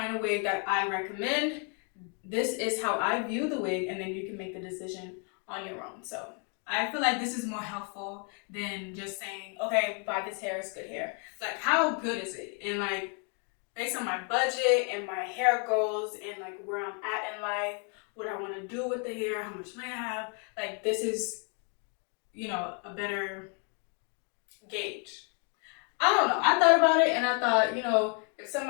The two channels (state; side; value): quieter; right; 39.0 dB